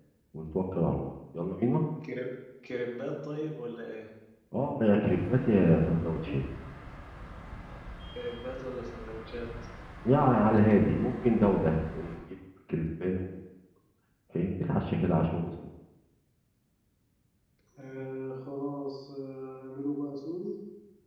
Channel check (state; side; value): identical; both; correlation 1.00